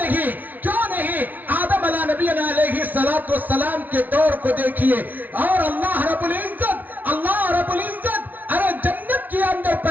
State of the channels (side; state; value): left; late; 0.080 ms